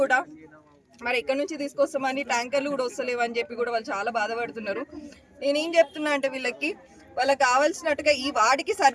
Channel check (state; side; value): identical; both; correlation 1.00